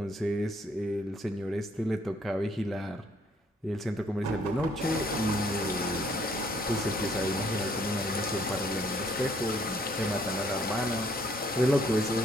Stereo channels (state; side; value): normal; both; correlation 0.65